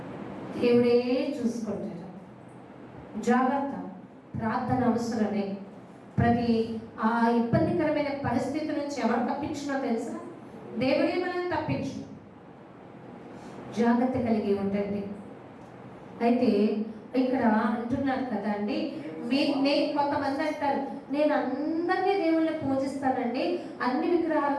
దేవుడే చూసుకుంటారు. జాగ్రత్త, ప్రార్థన అవసరమే. ప్రతి ఆ ఇబ్బందికరమైన పరిస్థితి నుంచి ఎవరు తప్పించినో తెలుసా? దేవుడే మనల్ని తప్పించు. జాగ్రత్త కలిగి ఉండండి. అయితే ఇక్కడ అంటున్నారు కదా అండి, కొంతమంది అంటారు, నేను అందరినీ దేవుళ్ళని పూజిస్తానండి, అన్ని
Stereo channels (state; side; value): identical; both; correlation 1.00